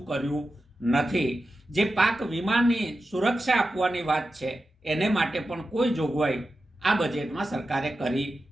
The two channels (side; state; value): both; normal; correlation 0.92